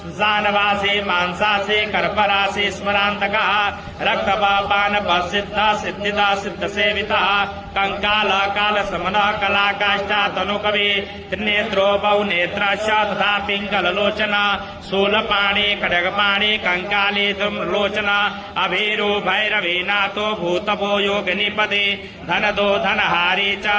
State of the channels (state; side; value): identical; both; correlation 1.00